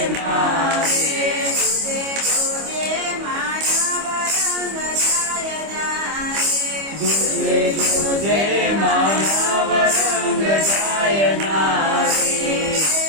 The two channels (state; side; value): late; left; 25 ms